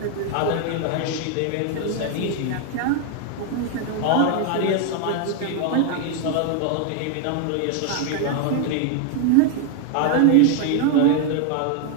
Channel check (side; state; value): both; different; correlation 0.00